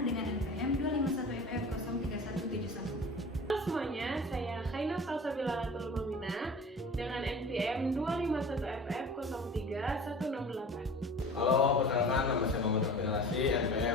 dengan NPM 251FF03171. Halo semuanya, saya Khaina Salsabila Tulumamina dengan NPM 251FF03168. Halo, perkenalkan nama saya Muhammad Rafi Narasi,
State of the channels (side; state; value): both; normal; correlation 0.40